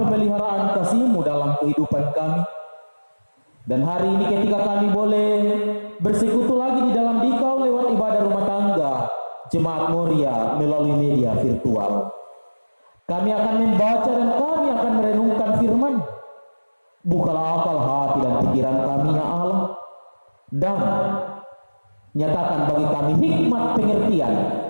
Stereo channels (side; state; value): both; inverted; correlation -1.00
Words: kasih-Mu dalam kehidupan kami. Dan hari ini ketika kami boleh bersekutu lagi di dalam Dikau lewat ibadah rumah tangga Jemaat Moria melalui media virtual, kami akan membaca dan kami akan merenungkan firman. Bukalah akal hati dan pikiran kami ya Allah, dan nyatakan bagi kami hikmat pengertian